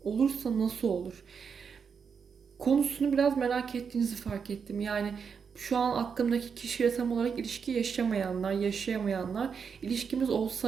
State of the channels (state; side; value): quieter; left; 6.3 dB